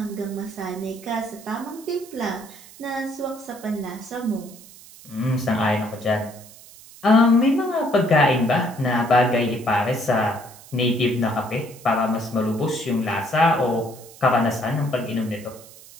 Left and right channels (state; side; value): noise; right; hiss, 20 dB below the sound